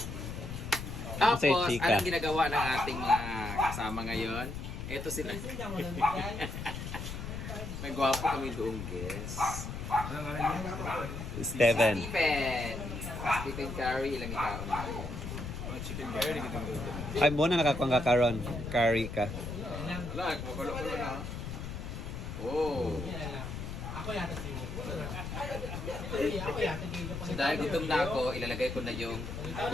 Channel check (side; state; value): left; noise; rumble, 7 dB below the sound